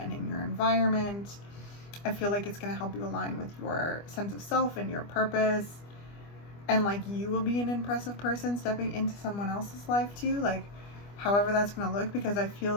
in your environment. I feel like it's going to help you align with your sense of self and your purpose, and like you will be an impressive person stepping into someone else's life too, like however that's going to look, because I feel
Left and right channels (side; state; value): right; late; 25 ms